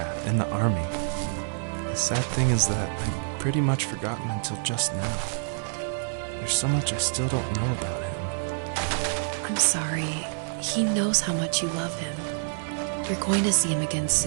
in the army. The sad thing is that I've pretty much forgotten until just now. There's so much I still don't know about him. I'm sorry. He knows how much you love him. You're going to see him again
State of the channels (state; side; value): silent; left; digital silence